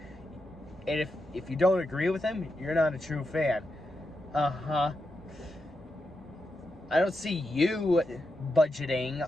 And if you don't agree with him, you're not a true fan. I don't see you budgeting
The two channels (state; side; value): normal; both; correlation 0.86